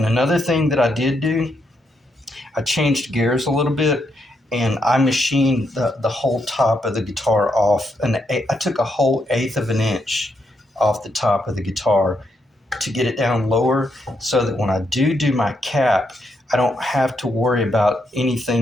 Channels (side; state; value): both; normal; correlation 0.79